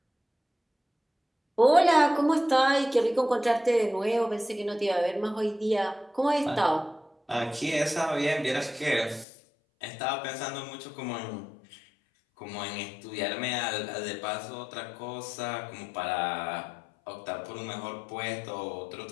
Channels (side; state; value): right; drops out; at 9.2 s